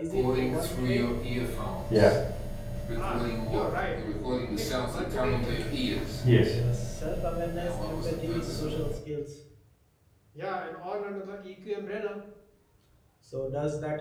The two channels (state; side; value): identical; both; correlation 1.00